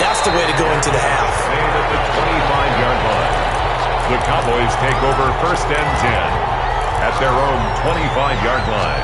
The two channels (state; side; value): identical; both; correlation 1.00